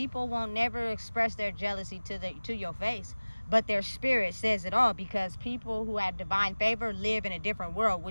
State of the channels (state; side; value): inverted; both; correlation -1.00